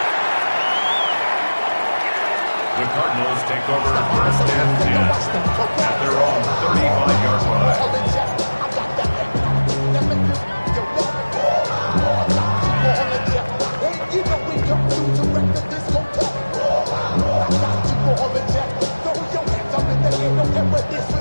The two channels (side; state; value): both; inverted; correlation -1.00